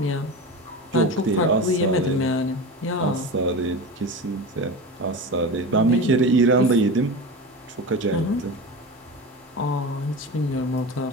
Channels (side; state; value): both; normal; correlation 0.27